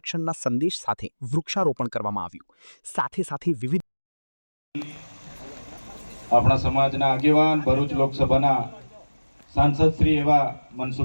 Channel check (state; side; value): inverted; both; correlation -1.00